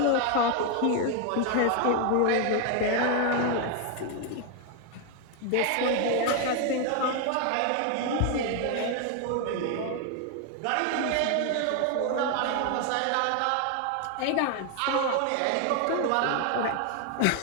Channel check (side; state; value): both; different; correlation 0.00